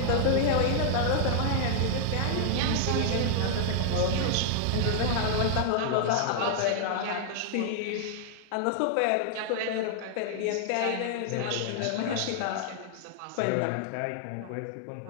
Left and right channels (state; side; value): different; both; correlation 0.00